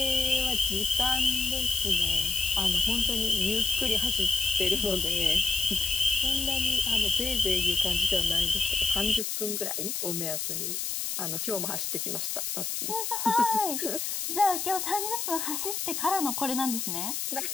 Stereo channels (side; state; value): left; noise; hiss, 2 dB below the sound